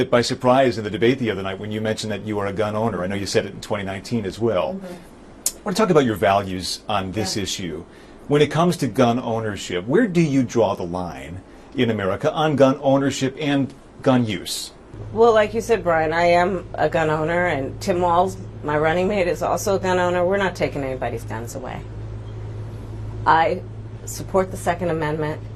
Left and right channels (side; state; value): both; identical; correlation 1.00